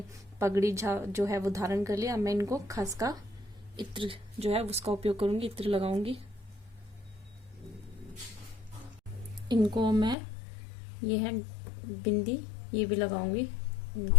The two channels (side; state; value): right; drops out; at 10.2 s